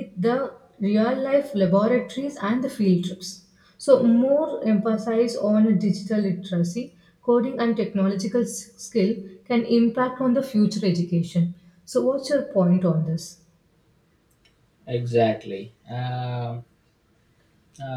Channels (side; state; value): both; identical; correlation 1.00